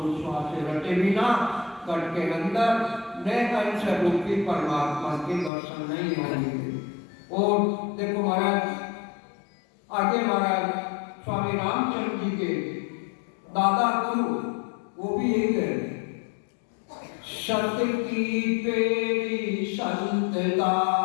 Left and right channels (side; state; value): right; drops out; at 5.5 s